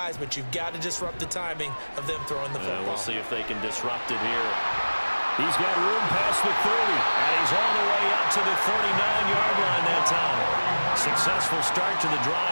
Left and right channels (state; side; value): inverted; both; correlation -1.00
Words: but you've got to disrupt the timing of them throwing the football. We'll see if they can disrupt it here. He's got room past the 30, and he's all the way up to the 39-yard line that time. Successful start to the